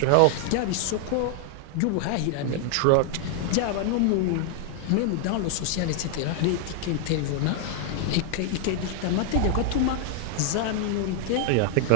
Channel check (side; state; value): both; different; correlation 0.00